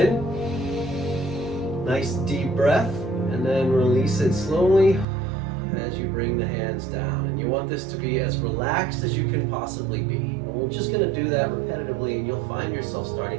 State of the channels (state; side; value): drops out; left; at 5.1 s